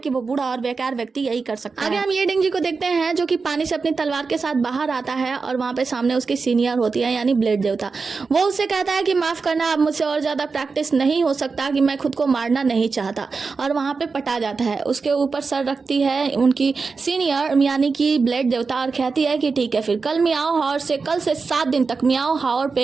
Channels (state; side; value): quieter; left; 4.6 dB